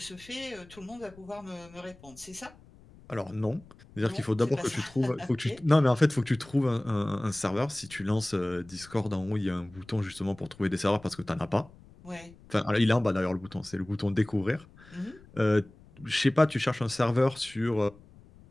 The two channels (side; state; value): left; noise; rumble, 23 dB below the sound